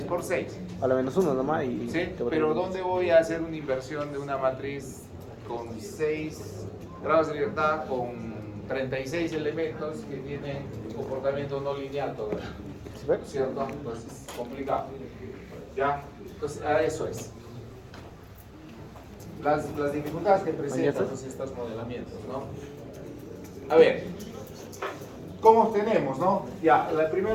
por 6. A la menos 1 nomás y... ¿Sí? te va a Pero tener- ¿dónde voy a hacer una inversión de una matriz con 6 grados de libertad, con 36 elementos que tienen comportamiento no lineal todavía? ¿Sí ves? ¿Cierto? Entonces, complicado. ¿Ya? Entonces, a eso es. Las dificultades que presentan pues, estos modelamientos, ¿no? A ver, ¿cómo obtenemos, no? Ya,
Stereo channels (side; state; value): both; identical; correlation 1.00